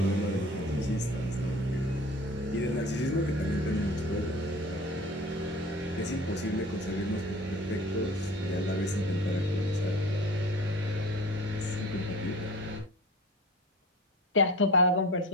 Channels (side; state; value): both; normal; correlation 0.40